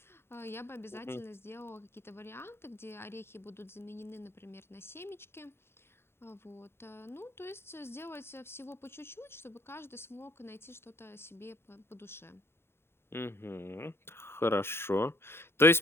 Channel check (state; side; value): late; right; 0.12 ms